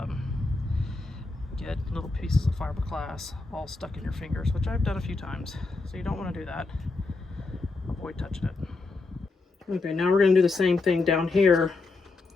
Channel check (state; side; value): quieter; right; 3.6 dB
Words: get little pieces of fiberglass all stuck in your fingers, which I've done a few times. So you don't want to do that. Avoid touching it. Okay, now we're going to do the same thing down here